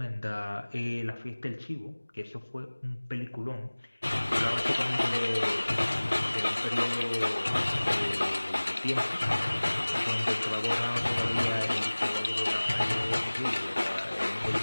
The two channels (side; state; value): both; inverted; correlation -1.00